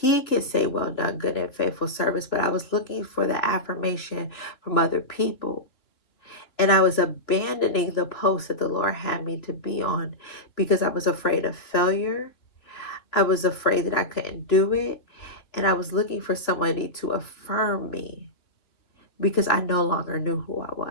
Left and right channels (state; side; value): late; right; 2.9 ms